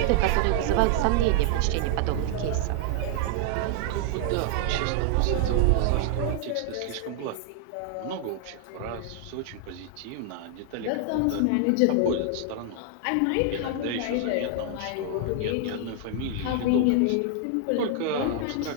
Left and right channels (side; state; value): both; different; correlation 0.00